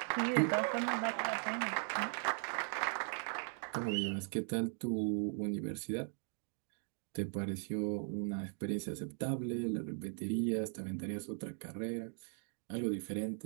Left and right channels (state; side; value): silent; left; 52 dB below the other